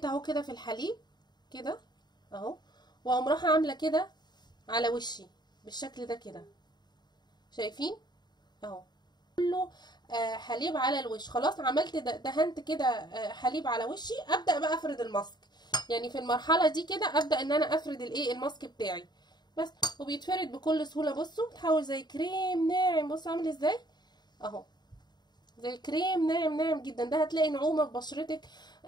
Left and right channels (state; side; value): late; right; 0.21 ms